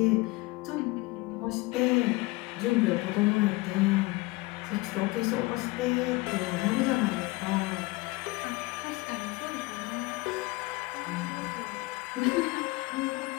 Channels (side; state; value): right; quieter; 22.7 dB